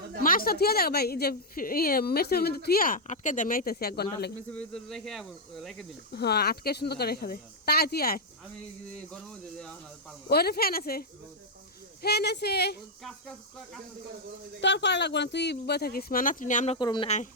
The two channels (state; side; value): normal; both; correlation -0.04